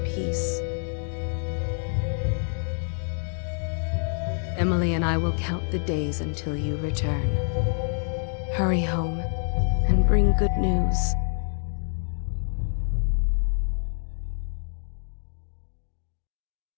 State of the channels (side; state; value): right; silent; 59 dB below the other